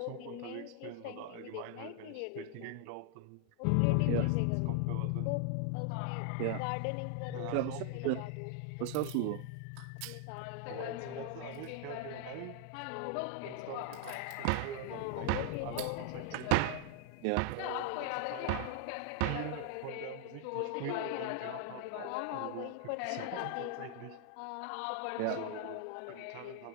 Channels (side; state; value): both; different; correlation 0.00